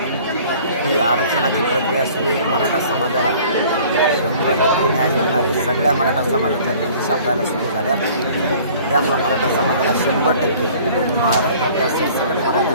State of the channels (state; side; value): inverted; both; correlation -0.50